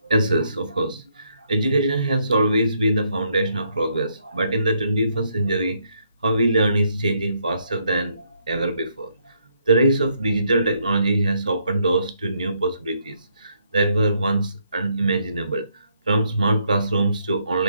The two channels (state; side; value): inverted; both; correlation -0.73